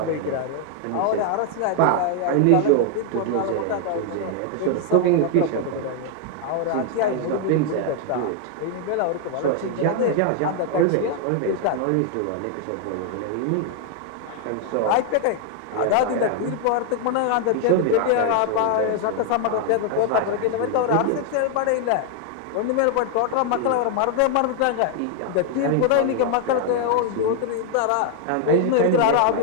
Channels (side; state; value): both; different; correlation 0.00